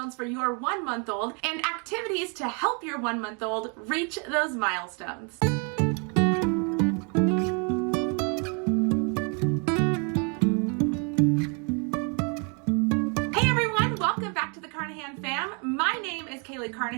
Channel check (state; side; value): quieter; left; 36.1 dB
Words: for your 1-month-old and activities to help your 1-month-old reach those milestones. Carnahan fam. My name is